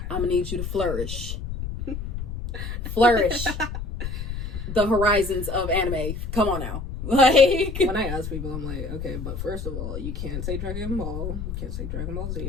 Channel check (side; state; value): left; noise; rumble, 5 dB below the sound